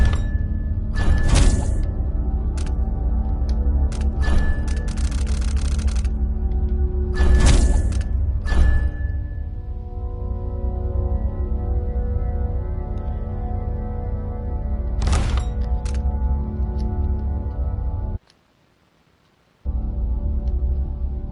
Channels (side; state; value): both; identical; correlation 1.00